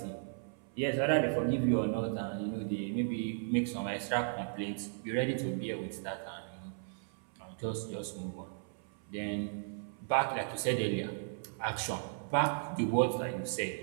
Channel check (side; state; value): left; silent; 54 dB below the other